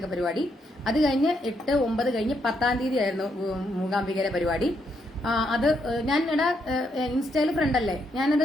പരിപാടി. അത് കഴിഞ്ഞ് 8, 9 കഴിഞ്ഞ് 10ാം തീയതി ആയിരുന്നു മൂകാംബികയുടെ പരിപാടി. അത് ഞാൻ ഇൻസ്റ്റയിൽ ഫ്രണ്ട് അല്ലേ, ഞാനത്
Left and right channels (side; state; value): both; normal; correlation 0.77